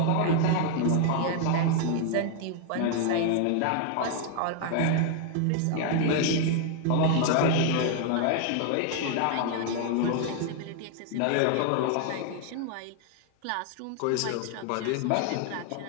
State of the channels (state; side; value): different; both; correlation 0.00